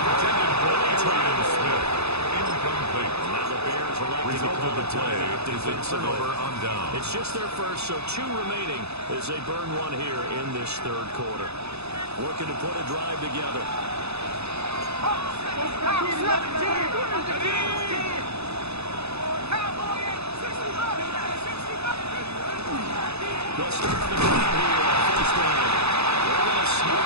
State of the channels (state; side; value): late; left; 0.79 ms